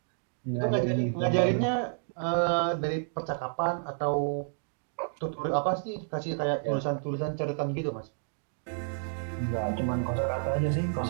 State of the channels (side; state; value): left; silent; digital silence